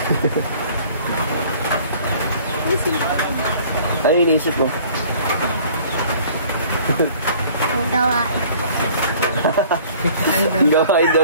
Ano iniisip mo? Ang gawain. Ang gawain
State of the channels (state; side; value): inverted; both; correlation -0.52